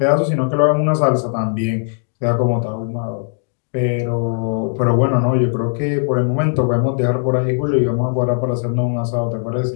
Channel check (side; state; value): right; silent; digital silence